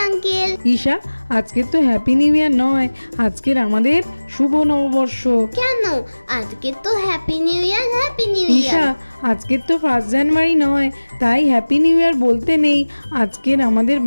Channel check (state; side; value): inverted; both; correlation -1.00